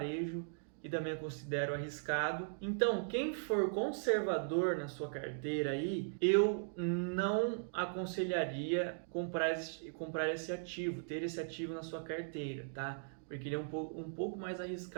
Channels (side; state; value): left; silent; digital silence